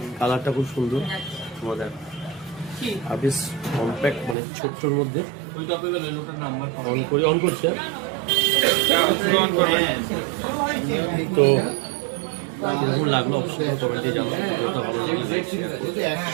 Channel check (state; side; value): drops out; left; at 4.4 s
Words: কালারটা খুব সুন্দর মজার আর বেশ কম্প্যাক্ট, মানে ছোট্টর মধ্যে অন করছে তো কিরকম লাগলো অবশ্যই কমেন্টে জানাবো। ভালো লাগলে